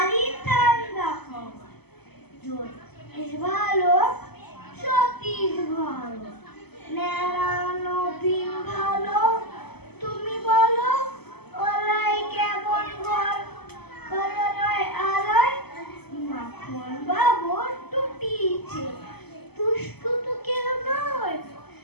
ঠান্ডা খবর, জ্যোতিষ ভালো, সতীশ ভালো, নেড়া নবীন ভালো। তুমি বলো ওরাই কেমন ঘর কলরায় আলোয় মাখন বাবুর টুটিছে। দুষ্টু তো কেউ নয়,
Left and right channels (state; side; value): late; right; 0.97 ms